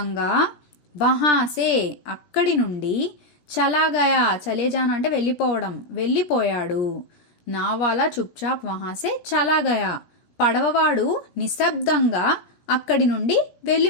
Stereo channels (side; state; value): right; late; 17 ms